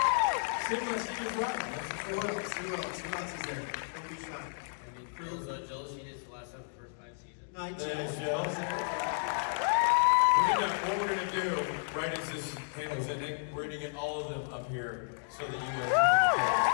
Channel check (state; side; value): silent; right; digital silence